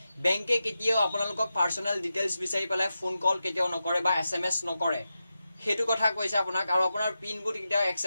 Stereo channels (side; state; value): both; inverted; correlation -0.91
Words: বেংকে কেতিয়াও আপোনালোকক পাৰ্চনেল ডিটেইলছ বিচাৰি পেলাই ফোন কল কেতিয়াও নকৰে বা SMS নকৰে। সেইটো কথা কৈছে আপোনাক। আৰু আপোনাৰ পিনবোৰ কেতিয়াও